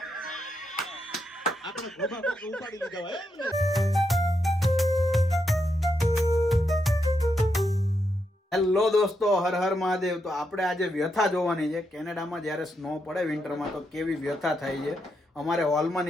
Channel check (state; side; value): normal; both; correlation 0.82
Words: આપણે ગોભા કોક ઉપાડી લીધા હોય. હેલો દોસ્તો, હર હર મહાદેવ. તો આપણે આજે વ્યથા જોવાની છે. કેનેડામાં જ્યારે સ્નો પડે વિન્ટરમાં તો કેવી વ્યથા થાય છે. અમારે હોલમાં